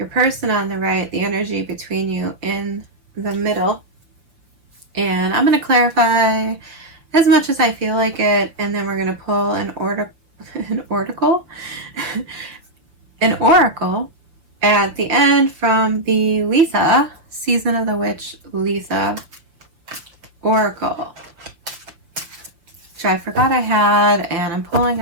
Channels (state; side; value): late; left; 6.3 ms